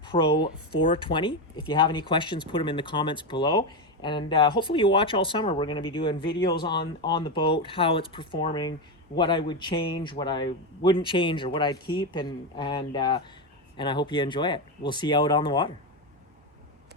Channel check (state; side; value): normal; both; correlation 0.11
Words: Pro 420. If you have any questions, put them in the comments below, and hopefully you watch all summer. We're going to be doing videos on the boat, how it's performing, what I would change, what I wouldn't change, or what I'd keep, and I hope you enjoy it. We'll see you out on the water.